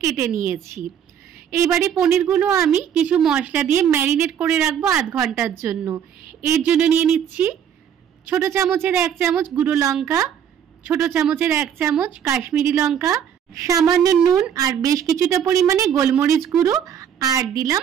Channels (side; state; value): left; quieter; 8.9 dB